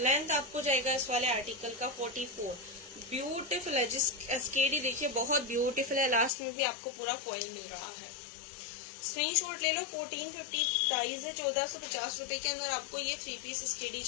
आपको जाएगा इस वाले आर्टिकल का 44। ब्यूटीफुल है, जिस एस्केडी देखिए बहुत ब्यूटीफुल है, लास्ट में भी आपको पूरा फॉइल मिल रहा है। स्क्रीनशॉट ले लो। 1450 प्राइस है, 1450 रुपए के अंदर आपको ये 3 पीस एस्केडी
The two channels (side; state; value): right; drops out; at 6.3 s